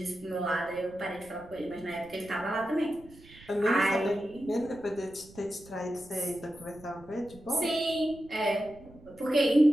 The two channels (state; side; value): noise; right; rumble, 22 dB below the sound